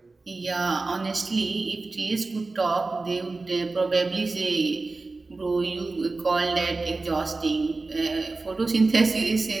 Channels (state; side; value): quieter; left; 3.6 dB